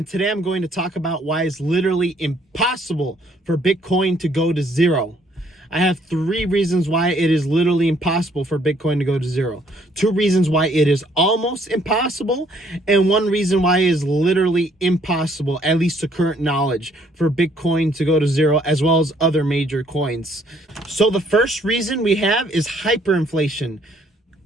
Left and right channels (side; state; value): both; normal; correlation 0.65